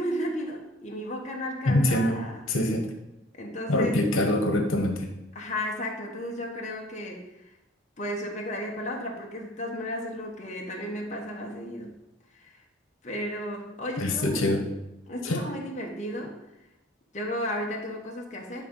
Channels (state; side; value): normal; both; correlation 0.48